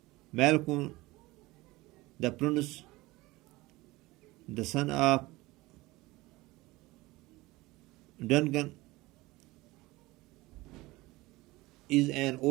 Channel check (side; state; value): left; quieter; 20.5 dB